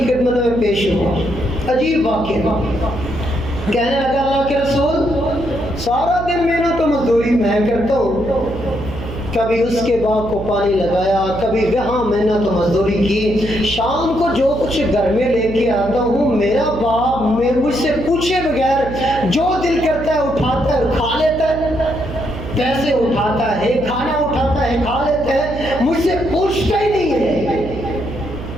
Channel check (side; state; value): right; noise; hum, 10 dB below the sound